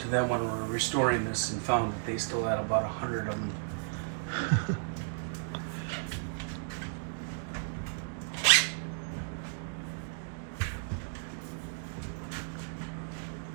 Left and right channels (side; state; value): left; silent; digital silence